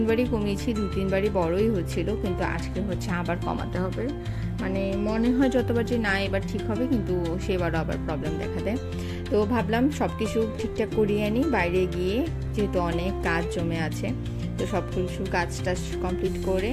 কমিয়েছি, 2-3বারই বড়ই হচ্ছিল, কিন্তু আজকে হচ্ছে আবার কমাতে হবে। মানে মনে হয় যতবার যে না এবার ঠিক হবে, কিন্তু সেবারও আবার প্রবলেম দেখা দেয়। তো ভাবলাম সব কিছু ঠিকঠাক করিয়ে আনি বাইরে গিয়ে, যেহেতু অনেক কাজ জমে আছে। তো সব কিছু কাজটা কমপ্লিট করে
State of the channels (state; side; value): identical; both; correlation 1.00